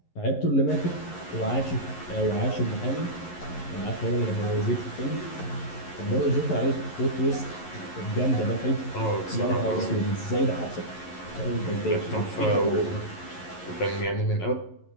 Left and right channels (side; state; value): right; late; 11 ms